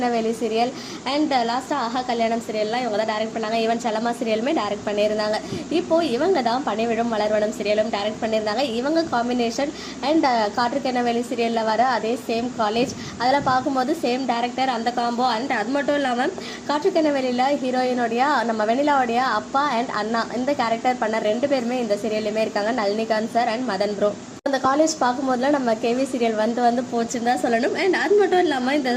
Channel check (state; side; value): identical; both; correlation 1.00